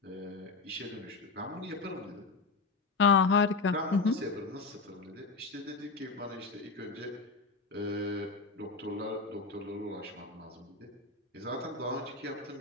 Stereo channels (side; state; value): right; quieter; 4.0 dB